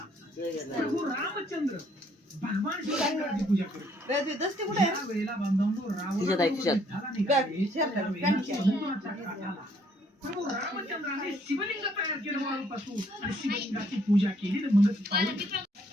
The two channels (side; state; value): both; normal; correlation 0.65